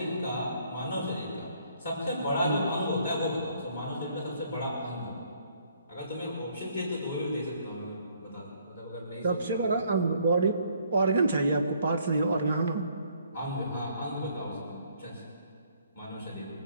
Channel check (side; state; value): both; inverted; correlation -0.65